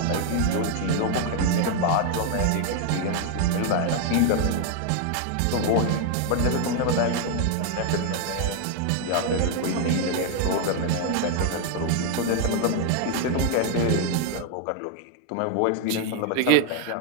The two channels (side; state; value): both; different; correlation 0.00